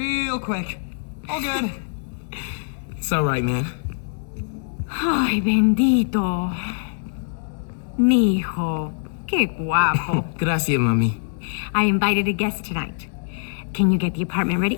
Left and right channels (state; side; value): silent; right; digital silence